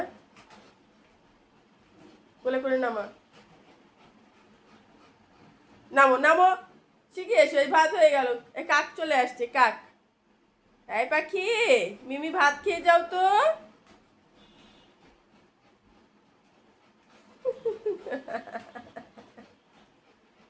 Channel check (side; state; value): both; identical; correlation 1.00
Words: কোলে করে নামা। নামো নামো, শিখে এসো। এই ভাত হয়ে গেল। এই কাক চলে আসছে, কাক। এই পাখি, মিমি ভাত খেয়ে যাও তো।